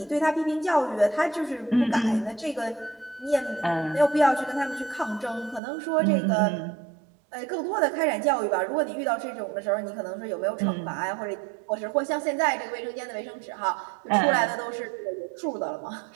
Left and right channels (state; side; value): drops out; left; at 5.6 s